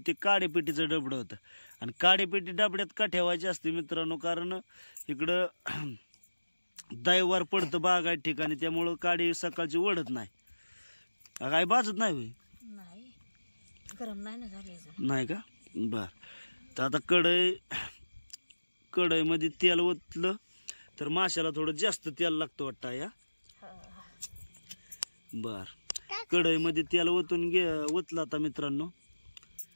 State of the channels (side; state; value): both; inverted; correlation -1.00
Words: ते काडेपेटीचं डबडं होतं. आणि काडेपेटी डबड्यात का ठेवायची असते मित्रांनो, कारण इकडं दैवार पडतं बागायत ठिकाणी, त्यामुळं काडी सकाळची ओढत नाही. काय बाजत नाही होय? नाही, गरम नाही ना झाले नाही का? बर. तर आता कढईमध्ये तेल ओतलं तर माशाला थोडं जास्त तेल लागतं वाटतं या. बर. कढईमध्ये तेल ओतलं आता मित्रांनो.